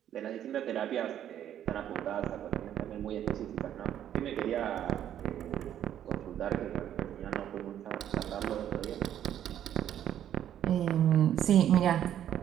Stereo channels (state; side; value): quieter; left; 10.6 dB